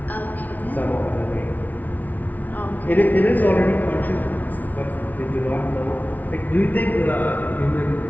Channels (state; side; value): late; right; 0.077 ms